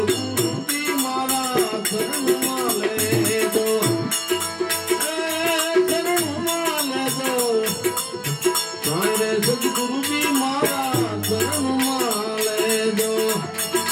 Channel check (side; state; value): both; identical; correlation 1.00